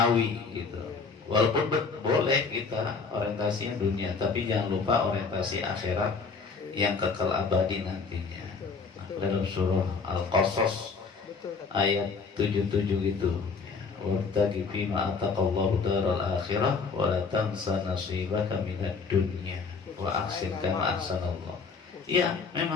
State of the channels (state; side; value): quieter; right; 4.9 dB